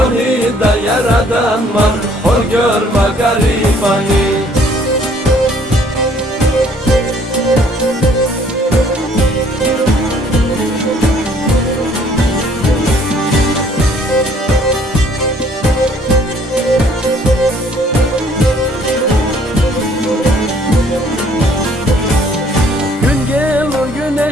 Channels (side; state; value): both; normal; correlation 0.60